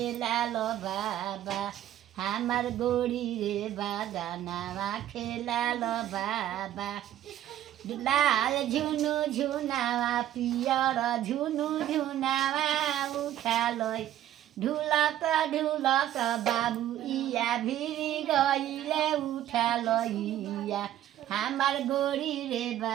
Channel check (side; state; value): left; quieter; 12.3 dB